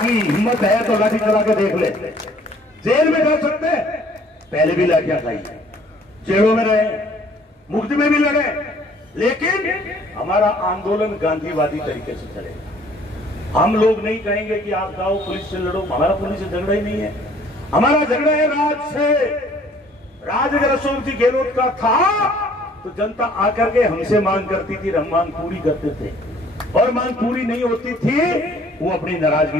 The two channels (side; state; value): both; normal; correlation 0.57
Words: हिम्मत है तो लाठी चला के देख ले। जेल में जा सकते हैं, पहले भी लाठियां खाई, जेलों में रहे, मुफ्त में भी लड़े, लेकिन हमारा आंदोलन गांधीवादी तरीके से चलेगा। हम लोग नहीं कहेंगे कि आप जाओ पुलिस से लड़ो, हमारा पुलिस से झगड़ा ही नहीं है, हमारा झगड़ा है राज से। राज अगर अशोक जी गहलोत का था तो जनता आकर के हमसे मांग करती थी, हम मांग पूरी करते थे, और मांग पूरी नहीं होती थी वो अपनी